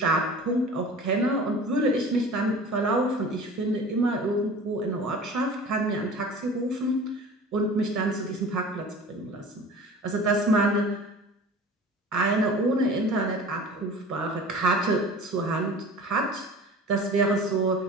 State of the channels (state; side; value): normal; both; correlation 0.40